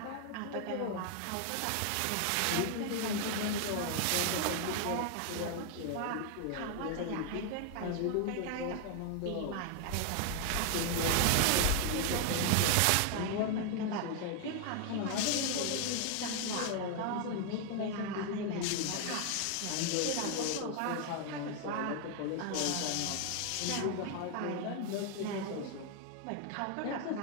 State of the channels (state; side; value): different; both; correlation 0.00